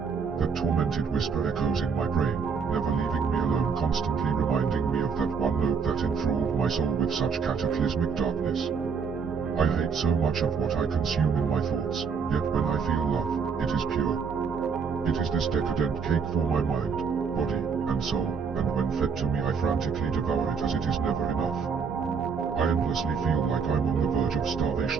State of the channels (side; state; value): left; quieter; 5.9 dB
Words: That tormented whisper echoes in my brain, never leaving me alone, constantly reminding me of that one note that enthralled my soul with such cataclysmic darkness. I hate so much of what I consume in my thoughts, yet when I feel love, it is pure. It is this decadent cake for my mind, body, and soul, and when fed to me I frantically devour it as it is never enough. I endlessly feel like I'm on the verge of